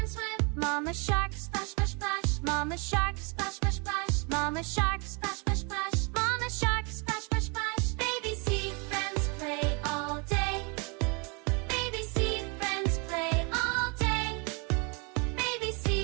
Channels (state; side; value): quieter; left; 32.9 dB